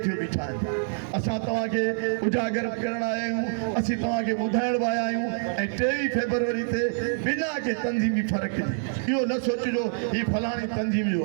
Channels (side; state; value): left; silent; digital silence